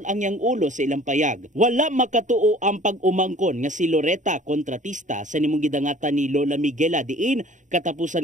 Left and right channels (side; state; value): left; late; 0.36 ms